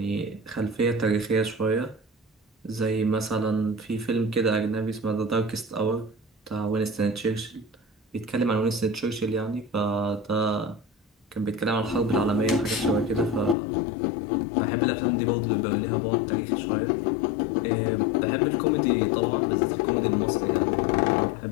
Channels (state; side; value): drops out; right; at 13.6 s